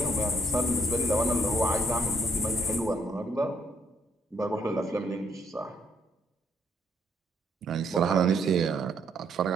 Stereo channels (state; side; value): normal; both; correlation 0.70